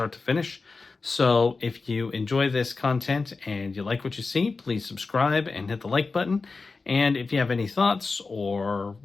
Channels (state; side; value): quieter; right; 4.1 dB